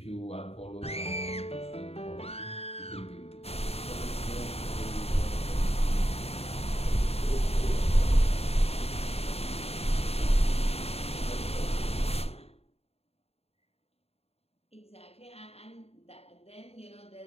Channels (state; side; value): late; right; 0.29 ms